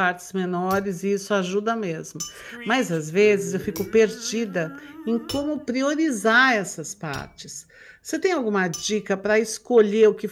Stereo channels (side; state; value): both; identical; correlation 1.00